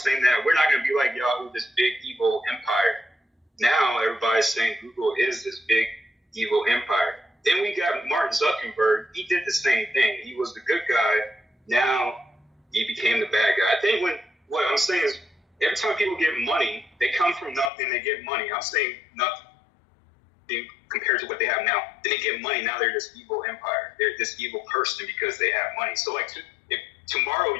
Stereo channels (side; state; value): right; drops out; at 17.7 s